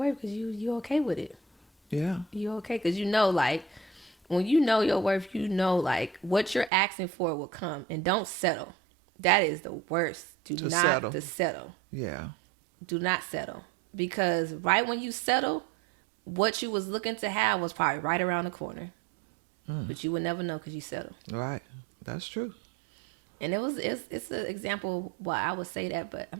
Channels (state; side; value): drops out; left; at 6.7 s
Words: because you okay with it. Yeah. You okay, because you know, like, when you know your worth, you know, like, what you're asking for will come. And don't settle. That is the worst. Do not settle. Yeah. Do not settle. Because right when you settle, what you was looking to have was probably right around the corner. But you would never know because you settle. Right. That's true. And it's an example why I would say that, but I'm